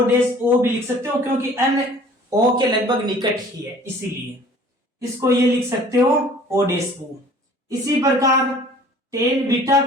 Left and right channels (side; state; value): both; normal; correlation 0.50